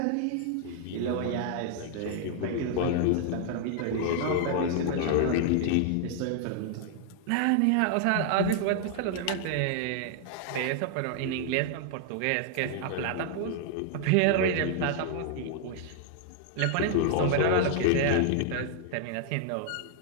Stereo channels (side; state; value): both; different; correlation 0.00